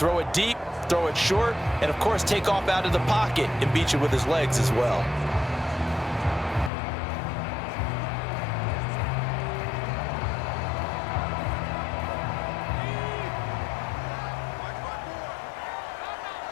it deep, throw it short, and, of course, take off out of the pocket and beat you with his legs as well.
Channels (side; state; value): right; drops out; at 6.7 s